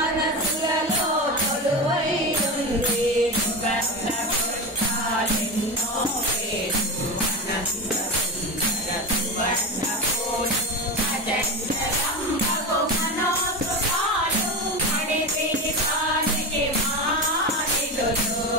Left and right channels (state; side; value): normal; both; correlation 0.21